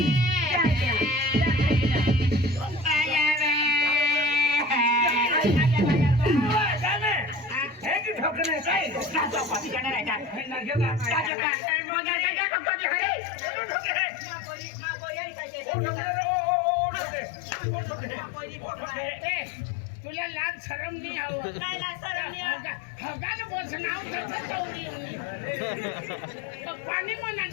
तुला लाज शरम नाही हवं हगाल बस नाव पाणी म्हणा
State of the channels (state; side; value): drops out; right; at 11.3 s